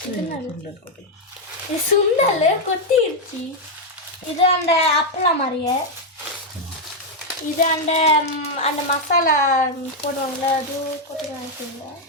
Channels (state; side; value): normal; both; correlation 0.00